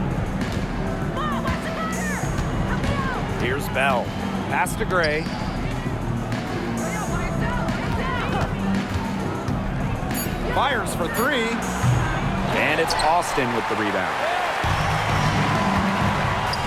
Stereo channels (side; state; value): both; identical; correlation 1.00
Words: Here's Bell. Pass to Gray. Fires for three. And it's Austin with the rebound.